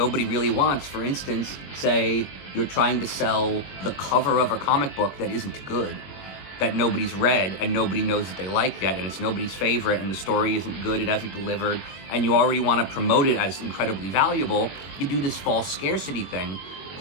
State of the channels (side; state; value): right; late; 21 ms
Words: really wants, for instance, say you're trying to sell the cover of a comic book that isn't good, that nobody's read and nobody knows that they like yet, and it's nobody's favorite, and the story isn't good, it hasn't delivered, and you already want to promote it as incredibly valuable, you do this false scarcity thing.